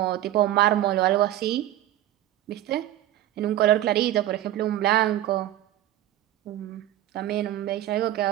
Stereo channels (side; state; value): left; quieter; 13.5 dB